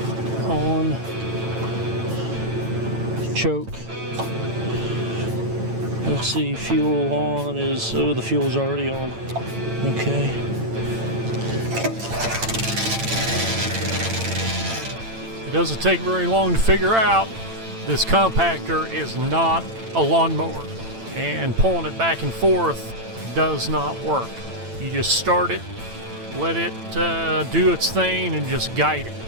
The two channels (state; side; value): late; left; 8.9 ms